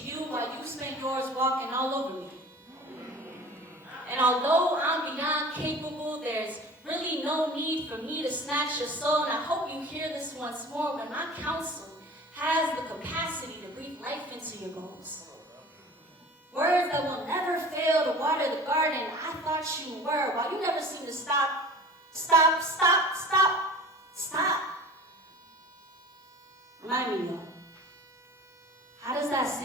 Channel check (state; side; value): normal; both; correlation 0.41